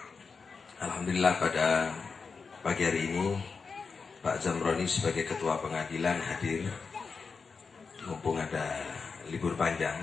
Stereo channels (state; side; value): quieter; right; 5.0 dB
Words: Alhamdulillah pada pagi hari ini Pak Zamroni sebagai ketua pengadilan hadir, mumpung ada libur panjang,